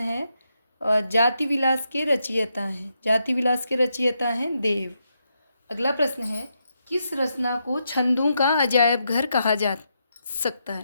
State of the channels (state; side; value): inverted; both; correlation -0.82